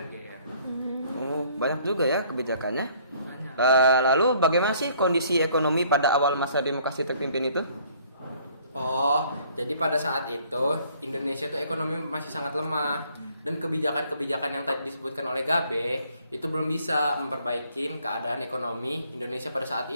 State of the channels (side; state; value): both; inverted; correlation -0.60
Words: GR. Oh, banyak juga ya kebijakannya. Banyak. Lalu bagaimana sih kondisi ekonomi pada awal masa demokrasi terpimpin itu? Oh, jadi pada saat itu Indonesia tuh ekonomi masih sangat lemah dan kebijakan-kebijakan yang tadi disebutkan oleh Gabe itu belum bisa memperbaiki keadaan ekonomi Indonesia pada saat